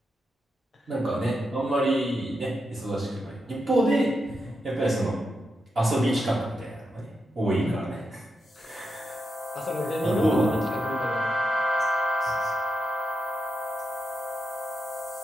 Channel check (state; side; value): normal; both; correlation 0.85